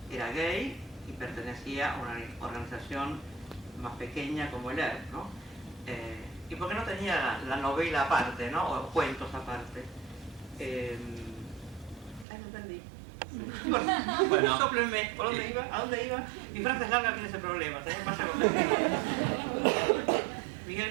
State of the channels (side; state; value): left; drops out; at 12.2 s